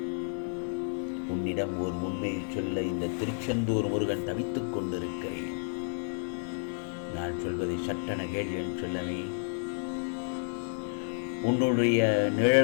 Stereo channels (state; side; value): silent; right; digital silence